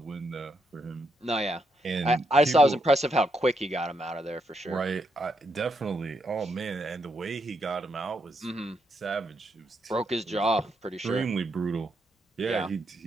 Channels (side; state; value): both; normal; correlation 0.79